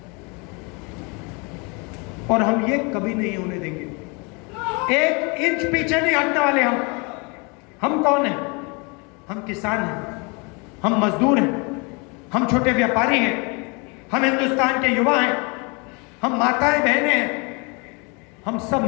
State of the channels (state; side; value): quieter; right; 30.7 dB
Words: और हम ये कभी नहीं होने देंगे। 1 इंच पीछे नहीं हटने वाले हम कौन हैं? हम किसान हैं, हम मजदूर हैं, हम छोटे व्यापारी हैं, हम हिंदुस्तान के युवा हैं, हम माताएं बहनें हैं। हम सब